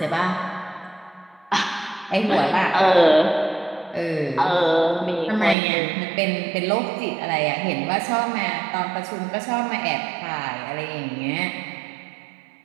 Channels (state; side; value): drops out; left; at 5.6 s